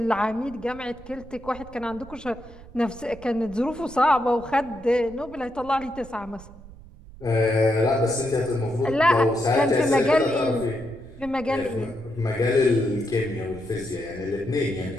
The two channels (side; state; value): right; noise; rumble, 19 dB below the sound